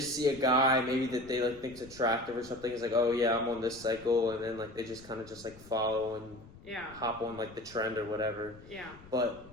see a guy, maybe that they, like, think's attractive or something. It's like, oh, yeah, I'm on this cycle. And then, like, they just kind of just, like, follow and hop on, like, the trend or whatever. Yeah. But...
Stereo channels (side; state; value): left; noise; rumble, 20 dB below the sound